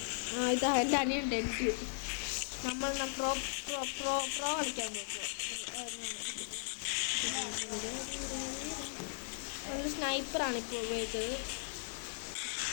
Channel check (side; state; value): right; silent; 53 dB below the other